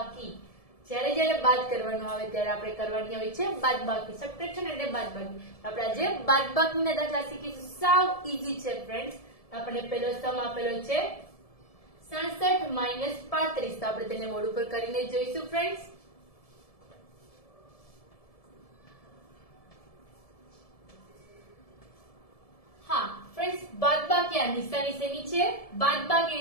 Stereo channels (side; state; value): right; late; 1.7 ms